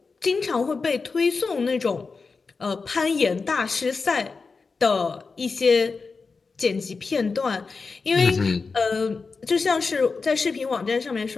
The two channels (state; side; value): quieter; right; 4.5 dB